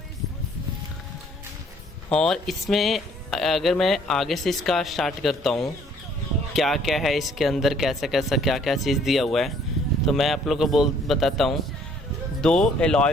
और इसमें अगर मैं आगे से इसका स्टार्ट करता हूँ, क्या क्या है इसके अंदर, कैसा कैसा क्या क्या चीज़ दिया हुआ है, तो मैं आप लोगों को बताता हूँ। 2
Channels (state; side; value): normal; both; correlation 0.61